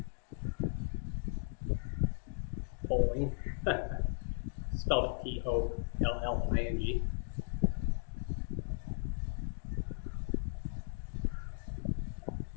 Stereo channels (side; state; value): right; silent; digital silence